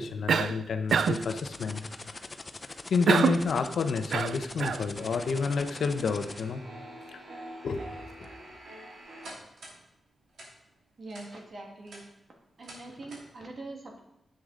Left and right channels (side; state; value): both; normal; correlation 0.78